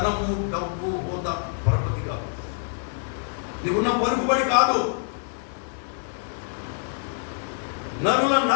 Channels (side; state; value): right; silent; digital silence